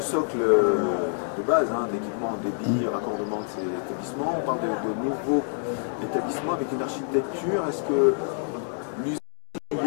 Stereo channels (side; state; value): right; silent; digital silence